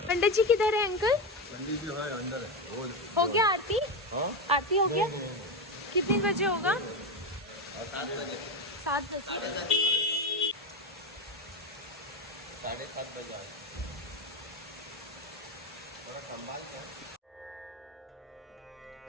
पंडित जी किधर है अंकल? पंडित जी है अंदर है। हो गया आरती? हाँ? आरती हो गया? कितने बजे होगा? 7 बजे। 7 बजे। 7:30 बजे आए। थोड़ा संभाल के।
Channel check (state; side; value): normal; both; correlation 0.15